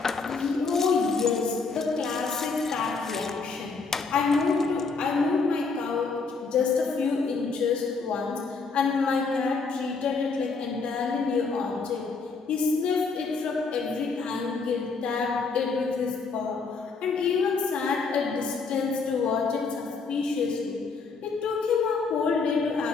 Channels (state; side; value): quieter; right; 4.6 dB